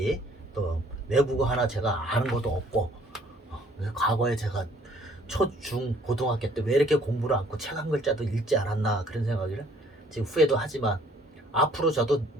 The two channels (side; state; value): both; normal; correlation 0.60